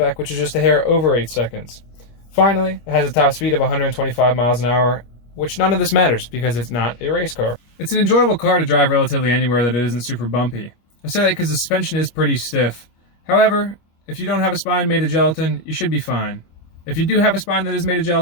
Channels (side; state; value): right; late; 25 ms